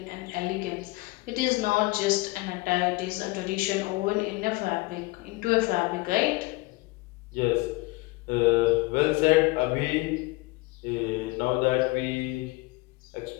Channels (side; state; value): right; quieter; 22.9 dB